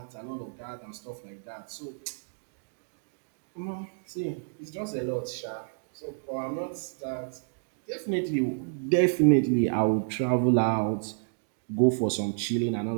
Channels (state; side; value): silent; left; digital silence